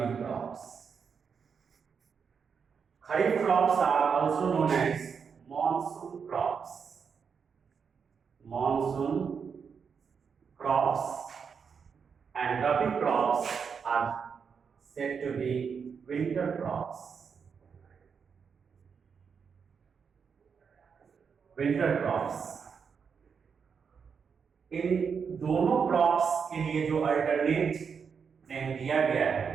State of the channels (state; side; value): quieter; left; 6.3 dB